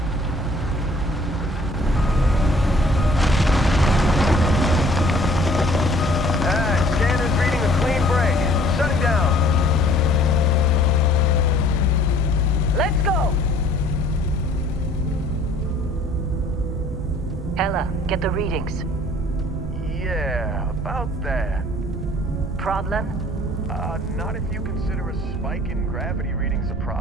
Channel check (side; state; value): both; normal; correlation 0.55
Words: Scanner's reading a clean break. Shutting down. Let's go! Ella, get the readings. Yeah, about that. Problem? Not if you consider a spike in gravity readings a